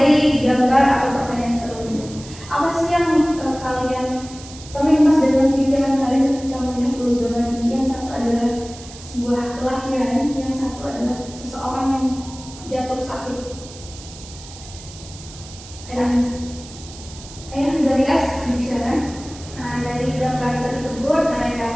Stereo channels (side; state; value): right; noise; hiss, 17 dB below the sound